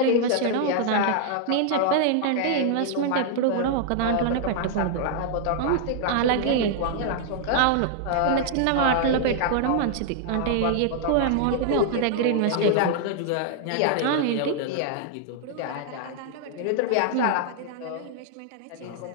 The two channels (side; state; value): both; different; correlation -0.01